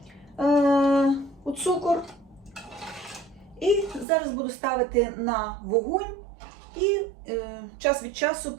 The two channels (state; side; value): drops out; left; at 4.0 s